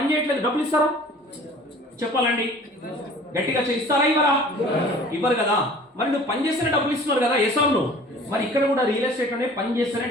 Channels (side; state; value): both; normal; correlation 0.47